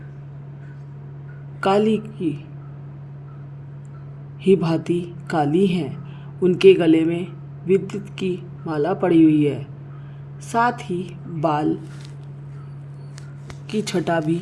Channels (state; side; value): identical; both; correlation 1.00